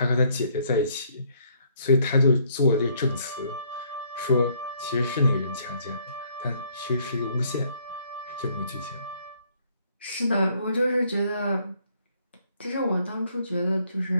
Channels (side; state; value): both; inverted; correlation -0.66